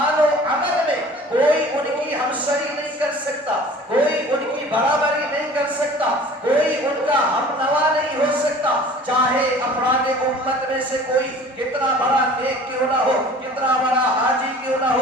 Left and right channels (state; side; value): normal; both; correlation 0.46